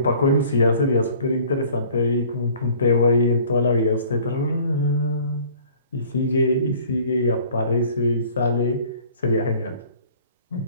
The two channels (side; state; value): both; inverted; correlation -0.52